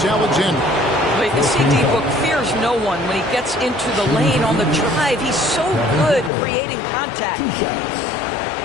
But the CD Book fears no one when he gets into the lane on the drive. He's so good creating contact.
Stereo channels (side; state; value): right; drops out; at 6.3 s